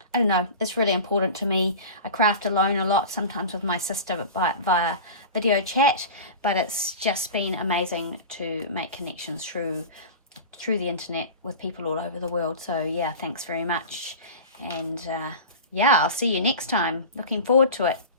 I don't know, it's really important to me. I craft alone a lot, sometimes with my sister via video chat, but it's just been amazing to make connections through the internet with people all over the world. So yeah, thanks very much, and yeah, I'll see you next time. Looking forward to it.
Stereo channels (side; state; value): both; inverted; correlation -0.32